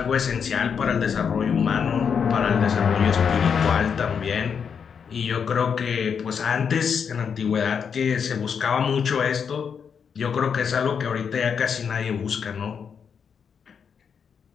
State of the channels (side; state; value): right; quieter; 6.8 dB